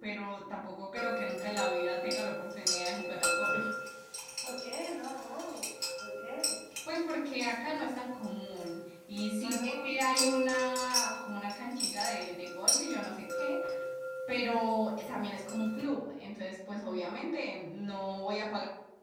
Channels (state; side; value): identical; both; correlation 1.00